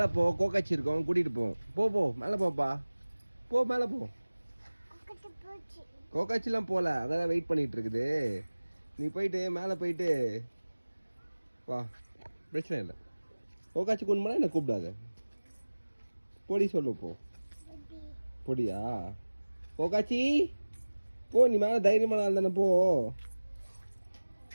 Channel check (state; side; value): inverted; both; correlation -1.00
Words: போ, கோக்காச்சி இருக்கோம், கூட்டிகிட்டு போ. போ மேலே போப்பா. போ மேலே போ. கோக்காச்சிலாம் போகல, அங்கதான் வெயிட் பண்ணிட்டு இருக்குது. நீ போயிட்டு மேலே போயிட்டு வா, பிரச்சனை இல்லை. கோக்காச்சி கொண்டு போனா என்ன கூப்பிடாத. பொடி சொல்லு போ. பொடியா. கோக்காச்சி போ, நீ மேலே தைரியமான ஆள் தானே, போ.